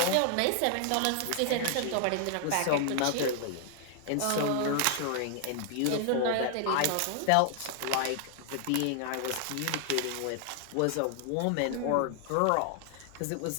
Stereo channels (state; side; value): different; both; correlation 0.00